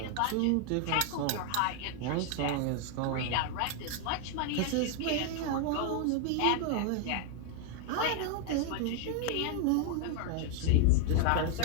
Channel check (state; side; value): different; both; correlation 0.00